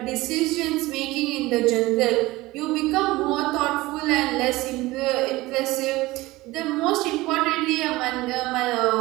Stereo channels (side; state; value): left; quieter; 19.5 dB